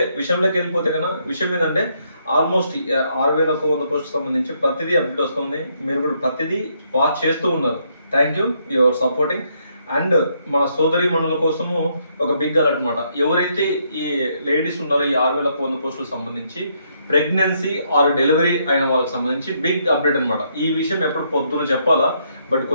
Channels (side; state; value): both; inverted; correlation -0.73